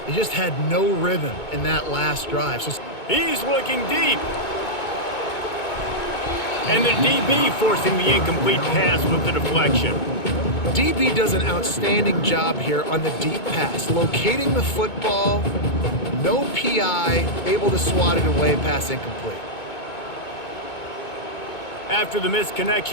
They just had no rhythm in that last drive. So he's looking deep. And the DB forcing the incomplete pass with the deflection. DB does an outstanding job here on the deep pass. Locating the football, no PI, able to swat it away, pass incomplete. After the missed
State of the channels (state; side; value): late; right; 2.2 ms